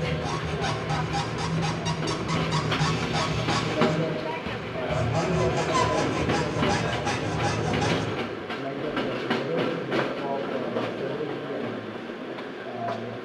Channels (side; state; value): both; identical; correlation 1.00